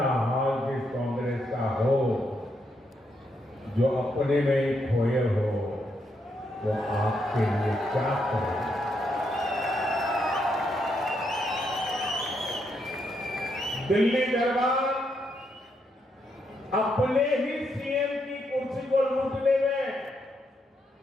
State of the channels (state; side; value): normal; both; correlation 0.79